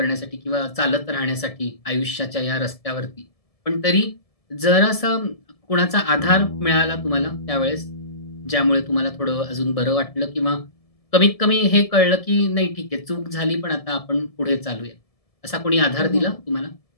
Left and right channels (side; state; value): right; late; 1.7 ms